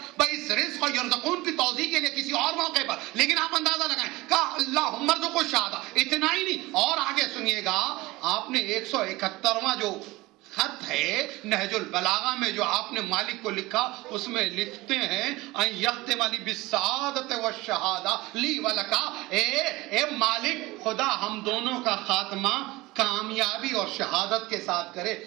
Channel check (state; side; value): quieter; left; 20.5 dB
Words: بھائی. اس رزق کو یرزقون کی توضیح کے لیے کسی اور موقع پر, لیکن آپ اندازہ لگائیں کہا اللہم ارزق الشہادہ. اتنا ہی نہیں, اور آگے سنیے گا, آپ نے 171واں جو خط ہے نہج البلاغہ میں جو آپ نے مالک کو لکھا, اس میں لکھتے ہیں ان یختم لی بالسعادت والشہادہ لی ولکا. اے مالک خدا ہم دونوں کا خاتمہ کامیابی اور شہادت کے ساتھ کرے.